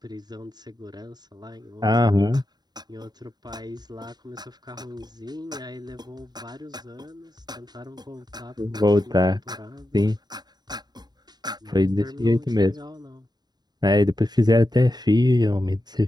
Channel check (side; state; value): left; late; 0.20 ms